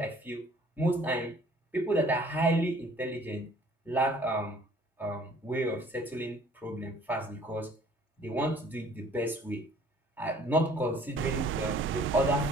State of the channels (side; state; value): both; normal; correlation 0.55